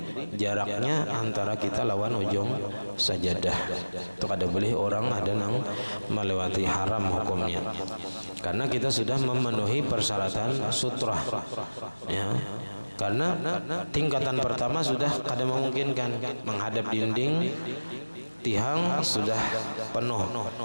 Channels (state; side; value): inverted; both; correlation -1.00